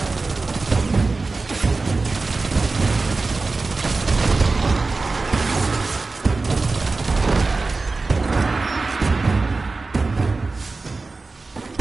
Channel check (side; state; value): left; quieter; 3.8 dB